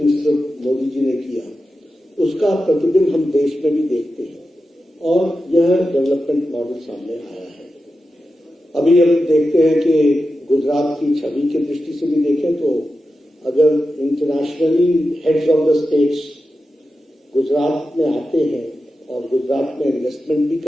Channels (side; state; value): both; normal; correlation 0.91